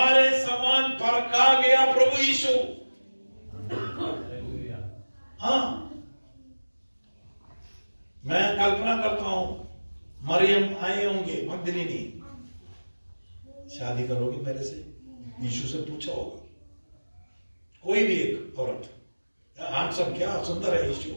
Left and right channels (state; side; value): inverted; both; correlation -1.00